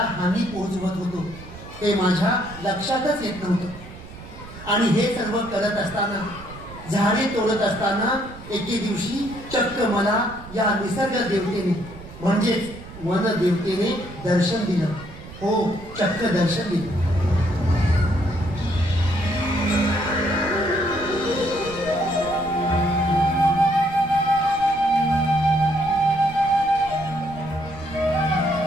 हानी पोहोचवत होतो ते माझ्या लक्षातच येत नव्हतं. आणि हे सर्व करत असताना, झाडे तोडत असताना एके दिवशी चक्क मला या निसर्ग देवतेने म्हणजेच वन देवतेने दर्शन दिलं. हो, चक्क दर्शन दिलं.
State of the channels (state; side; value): noise; right; rumble, 16 dB below the sound